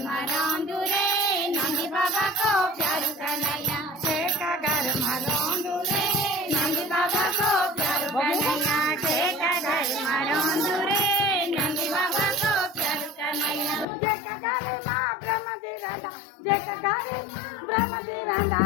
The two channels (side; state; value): right; drops out; at 13.9 s